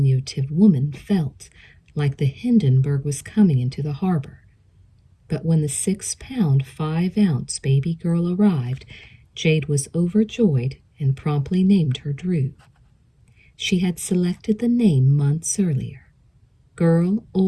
woman felt like the Hindenburg was coming into the harbor. But when the 6-pound, 5-ounce baby girl arrived, Jade was overjoyed and promptly named her Drew. She had selected the name months earlier. Girl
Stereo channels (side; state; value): both; identical; correlation 1.00